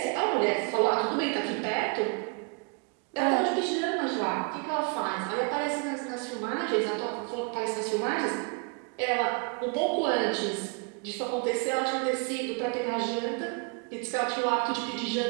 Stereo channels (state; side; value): quieter; left; 34.7 dB